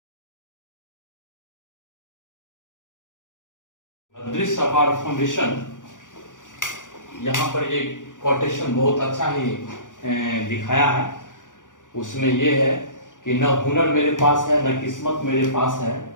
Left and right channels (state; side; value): late; right; 0.87 ms